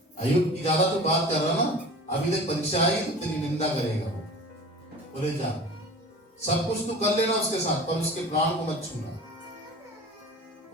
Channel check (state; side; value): normal; both; correlation 0.39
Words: अय्यूब की ज्यादा तो बात कर रहा ना, अभी देख परीक्षा आई तो तेरी निंदा करेगा। बोले जा, सब कुछ तू कर लेना उसके साथ, पर उसके प्राण को मत छूना,